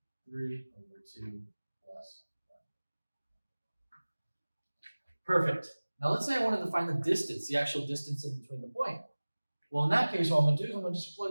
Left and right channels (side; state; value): both; inverted; correlation -1.00